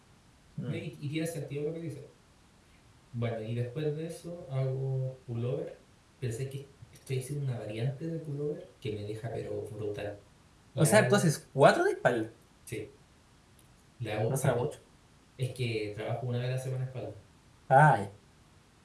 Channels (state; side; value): identical; both; correlation 1.00